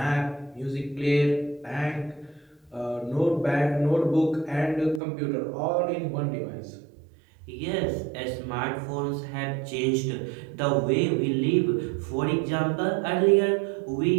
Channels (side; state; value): left; drops out; at 5.0 s